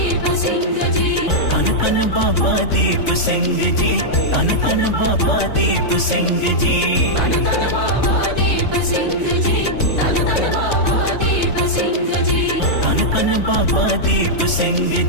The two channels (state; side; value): late; right; 3.5 ms